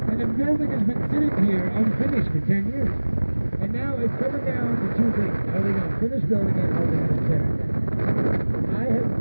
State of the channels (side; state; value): both; inverted; correlation -1.00